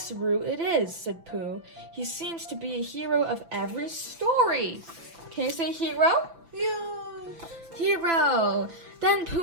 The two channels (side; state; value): left; late; 6.0 ms